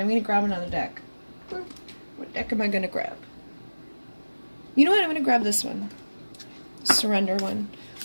going to grab another deck. What deck am I going to grab? You know what? I'm going to grab this one. Surrender one.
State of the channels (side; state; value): both; inverted; correlation -1.00